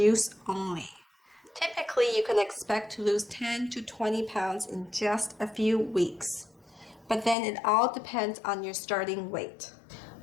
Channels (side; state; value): right; drops out; at 7.4 s